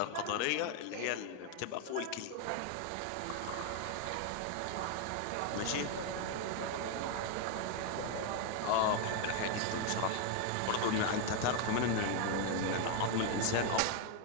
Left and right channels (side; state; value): both; different; correlation 0.00